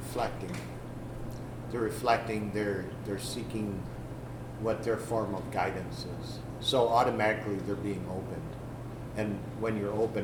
They're reflecting, they're seeking what their form of guidance is. So automatically they're being opened. And when you're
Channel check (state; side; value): identical; both; correlation 1.00